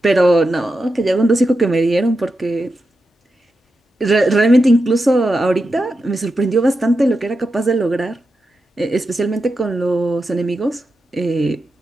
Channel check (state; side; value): normal; both; correlation 0.89